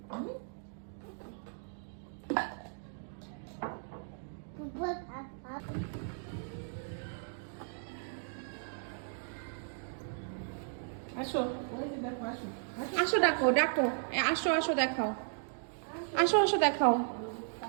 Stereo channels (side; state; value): left; silent; digital silence